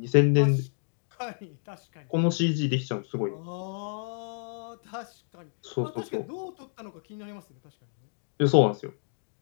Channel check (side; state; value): right; silent; digital silence